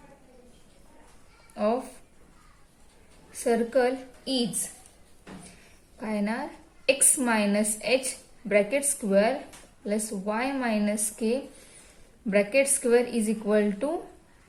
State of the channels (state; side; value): identical; both; correlation 1.00